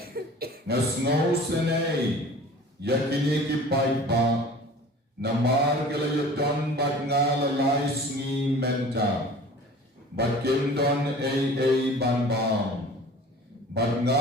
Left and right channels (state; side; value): normal; both; correlation 0.43